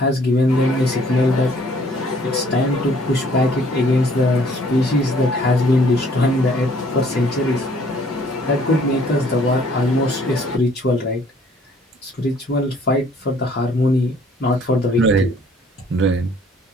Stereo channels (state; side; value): normal; both; correlation 0.59